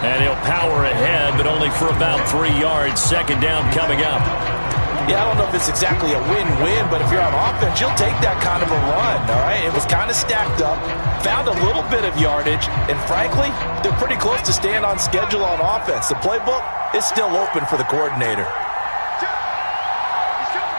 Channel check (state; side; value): inverted; both; correlation -1.00